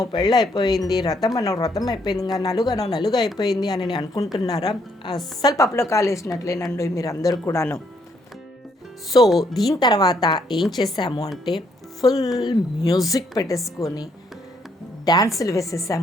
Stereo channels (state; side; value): normal; both; correlation 0.71